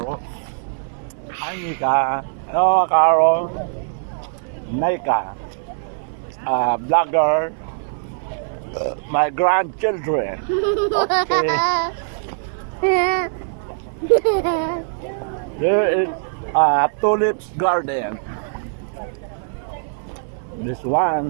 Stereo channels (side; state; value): left; silent; 64 dB below the other